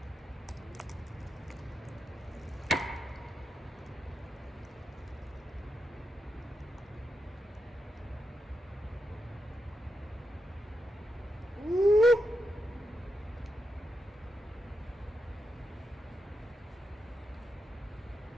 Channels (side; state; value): both; normal; correlation 0.85